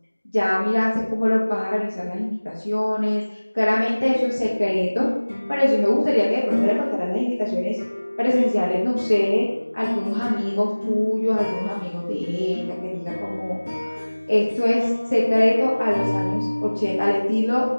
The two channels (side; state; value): both; inverted; correlation -1.00